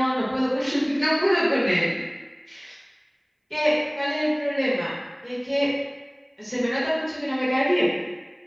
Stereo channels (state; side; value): identical; both; correlation 1.00